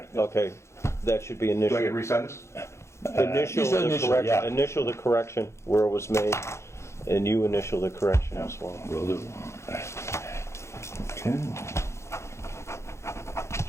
okay, that should be Do I initial. get to resend this? Initial you said the initial, correct, yeah. initial the correction where it was made, and you initial the correction as well. Will do. Okay.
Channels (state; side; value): late; right; 0.13 ms